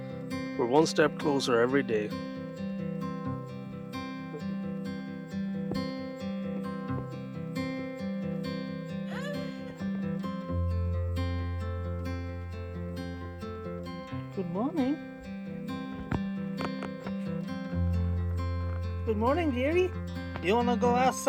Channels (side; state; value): both; identical; correlation 1.00